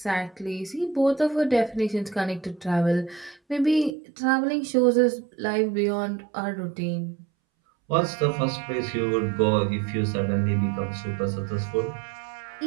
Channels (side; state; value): left; drops out; at 3.9 s